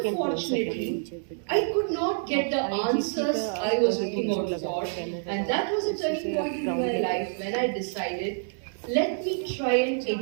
I could not get the answers I was looking out for, and that was a turning point in my life when I decided, let me try and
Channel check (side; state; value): left; silent; 60 dB below the other